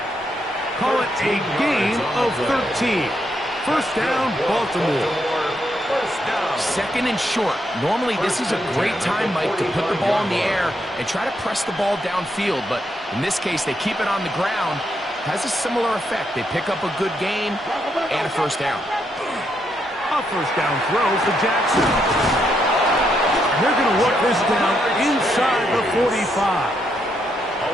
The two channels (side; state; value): both; normal; correlation 0.78